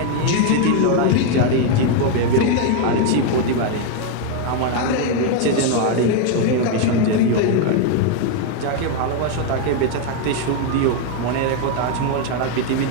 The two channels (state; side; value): different; both; correlation 0.01